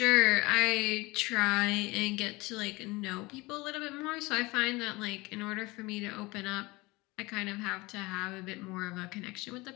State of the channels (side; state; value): right; quieter; 22.9 dB